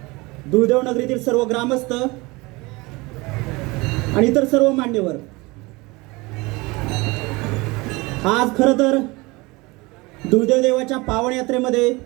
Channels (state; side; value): quieter; left; 23.8 dB